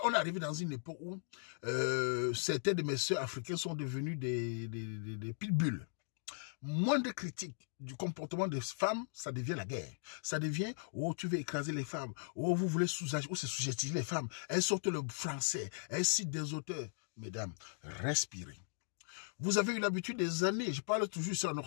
On est arrivé dans une époque où certaines de mes sœurs africaines sont devenues des pitbulls. Moins de critiques du comportement des femmes, ça devient la guerre. Ça devient, oh, tu veux écraser les femmes. Oh, vous voulez sous-estimer les femmes. Elles sortent le français. Elles citent des auteurs. Mesdames, respirez. Vous avez eu l'habitude des années, je parle toujours ici en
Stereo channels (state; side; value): silent; right; digital silence